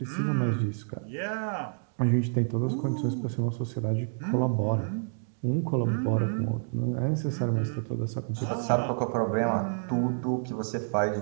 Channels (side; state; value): left; silent; digital silence